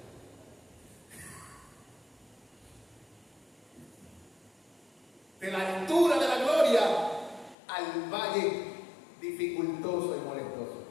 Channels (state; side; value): drops out; right; at 7.6 s